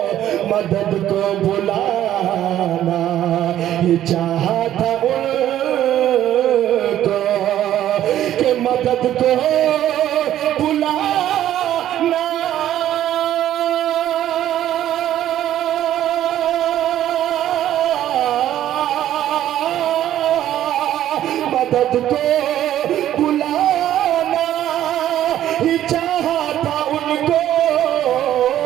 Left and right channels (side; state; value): left; quieter; 12.1 dB